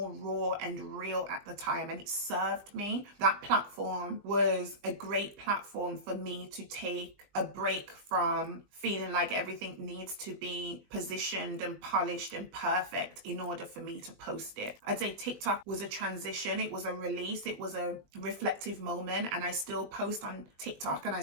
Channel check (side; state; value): left; late; 20 ms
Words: raw and real at the time, and it served me. That platform was a great platform for me to take a break from feeling like everything needs to be positioned and polished and perfect in order for me to post it. I'd say TikTok was a transition. It was a release. It was a reflective moment, and I still post on TikTok and I